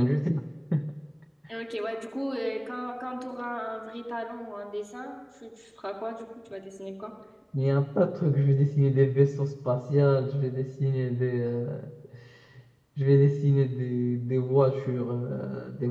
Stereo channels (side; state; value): both; identical; correlation 1.00